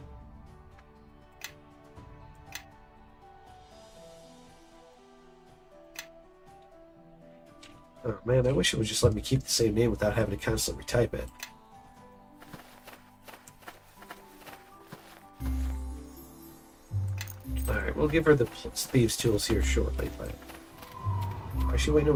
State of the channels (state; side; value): identical; both; correlation 1.00